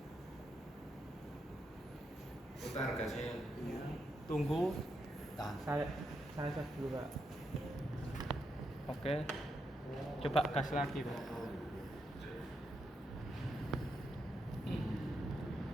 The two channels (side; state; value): both; normal; correlation 0.82